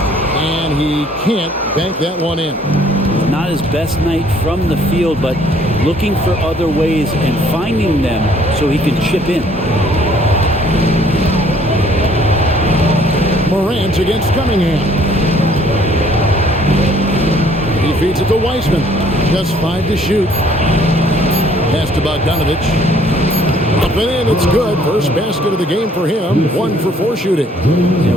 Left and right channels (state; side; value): normal; both; correlation 0.60